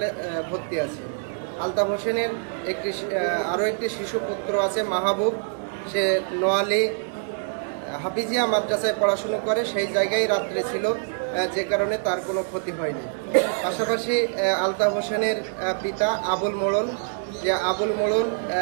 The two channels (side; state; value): left; silent; digital silence